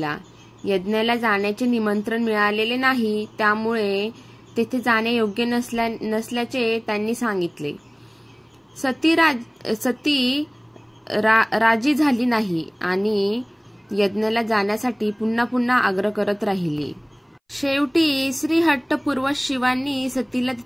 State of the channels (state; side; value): identical; both; correlation 1.00